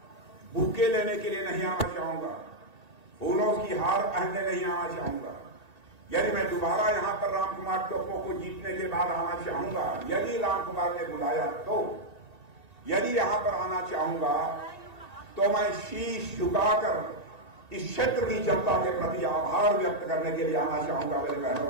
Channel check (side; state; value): left; late; 1.9 ms